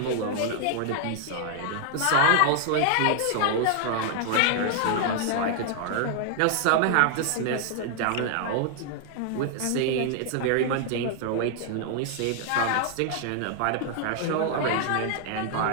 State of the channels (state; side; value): different; both; correlation 0.00